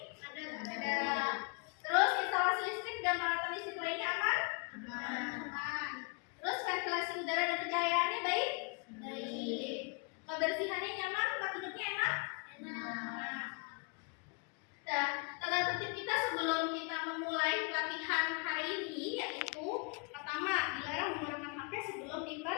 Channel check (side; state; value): right; quieter; 35.4 dB